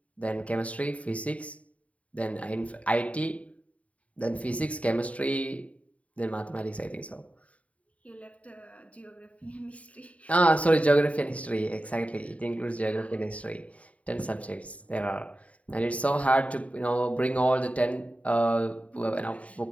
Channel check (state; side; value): late; right; 0.067 ms